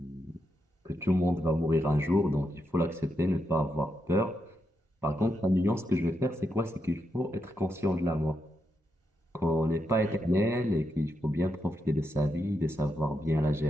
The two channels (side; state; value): both; normal; correlation 0.83